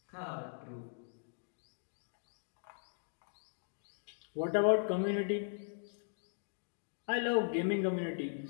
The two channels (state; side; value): silent; right; digital silence